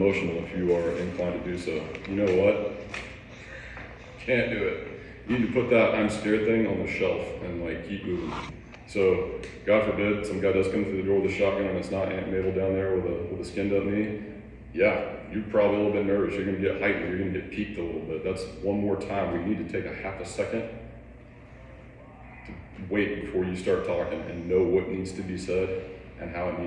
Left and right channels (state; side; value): identical; both; correlation 1.00